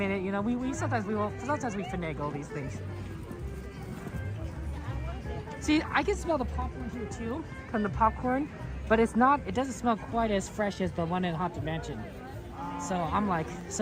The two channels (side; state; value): both; identical; correlation 1.00